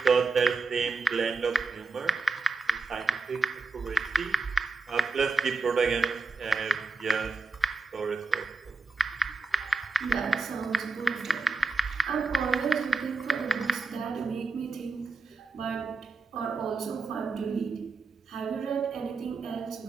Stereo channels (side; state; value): left; quieter; 4.1 dB